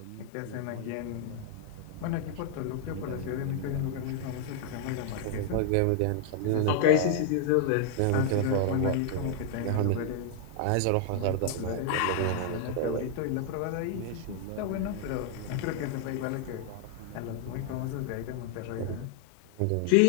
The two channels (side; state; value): both; different; correlation 0.00